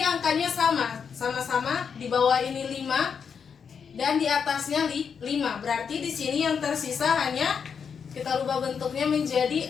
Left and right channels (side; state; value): right; quieter; 6.6 dB